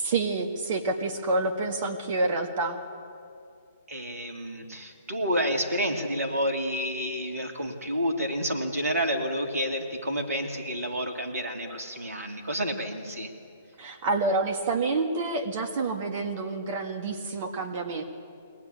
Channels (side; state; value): both; inverted; correlation -0.48